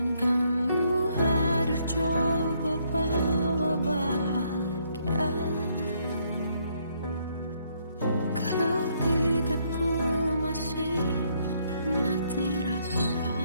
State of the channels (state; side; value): inverted; both; correlation -0.71